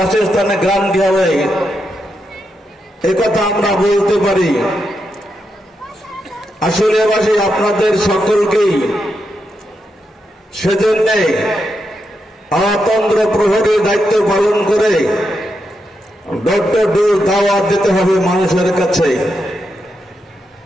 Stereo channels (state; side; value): normal; both; correlation 0.84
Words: গ্রান্টি হবে, একথা আমরা বলতে পারি। আসলে আপনাদের সকলকেই সেজন্য অতন্ত্র প্রহরীর দায়িত্ব পালন করে ডক্টর ডোজ দাওয়াত দিতে হবে মানুষের কাছে।